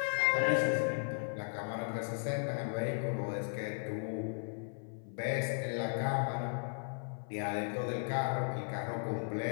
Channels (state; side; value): silent; right; 54 dB below the other